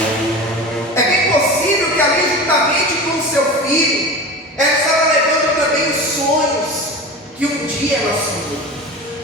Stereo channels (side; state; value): both; normal; correlation 0.31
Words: É bem possível que ali, juntamente com o seu filho, ela estava levando também os sonhos que um dia ela